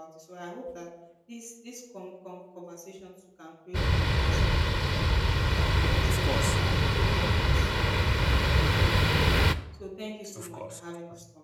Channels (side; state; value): both; identical; correlation 1.00